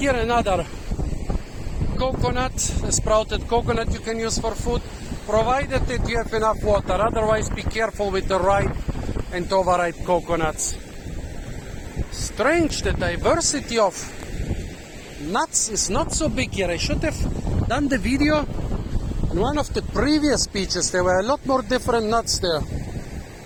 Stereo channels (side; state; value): both; identical; correlation 1.00